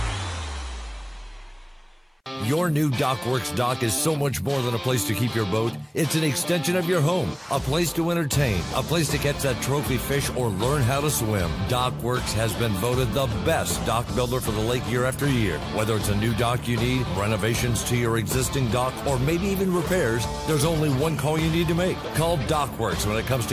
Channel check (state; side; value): identical; both; correlation 1.00